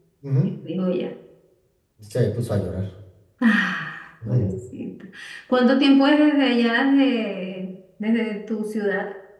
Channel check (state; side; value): identical; both; correlation 1.00